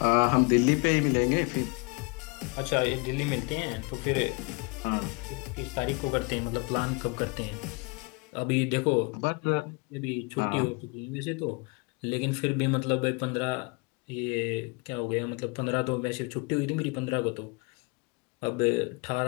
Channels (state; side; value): quieter; right; 30.6 dB